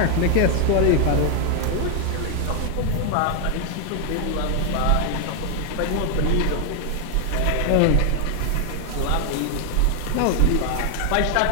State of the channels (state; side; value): different; both; correlation 0.00